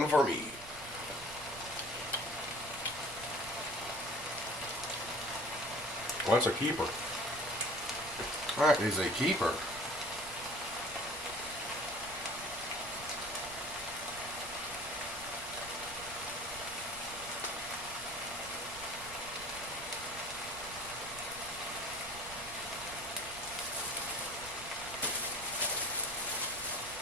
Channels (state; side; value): noise; right; rumble, 17 dB below the sound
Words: for me. Well, that's a keeper. That is a keeper.